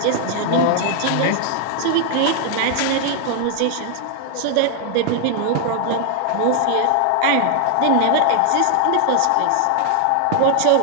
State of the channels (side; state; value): both; different; correlation 0.00